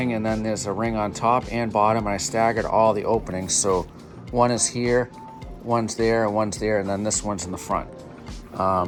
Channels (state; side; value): identical; both; correlation 1.00